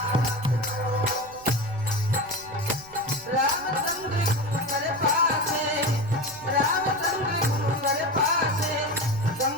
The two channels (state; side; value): noise; right; rumble, 23 dB below the sound